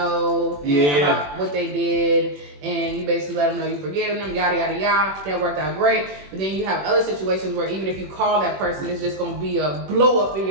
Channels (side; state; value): left; late; 21 ms